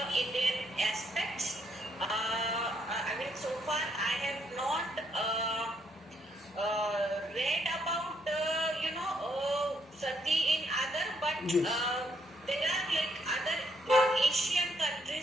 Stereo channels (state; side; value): normal; both; correlation 0.73